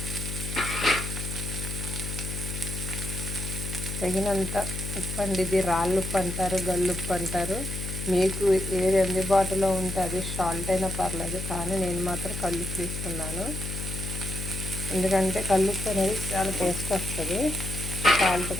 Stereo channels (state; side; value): noise; left; hum, 5 dB below the sound